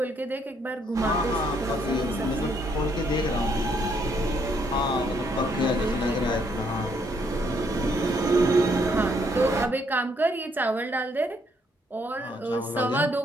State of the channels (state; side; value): normal; both; correlation 0.71